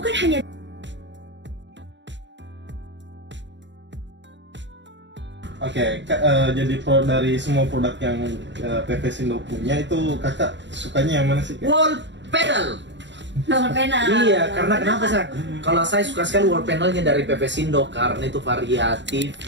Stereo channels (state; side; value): late; left; 0.53 ms